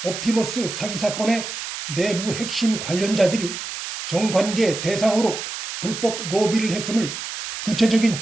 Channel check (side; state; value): right; noise; hiss, 7 dB below the sound